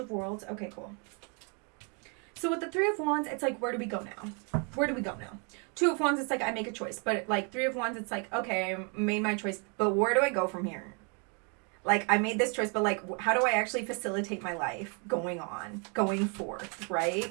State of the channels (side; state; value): left; quieter; 36.4 dB